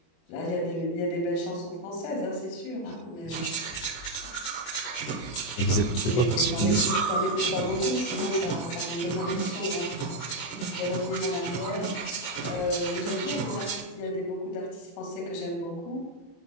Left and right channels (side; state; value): right; late; 24 ms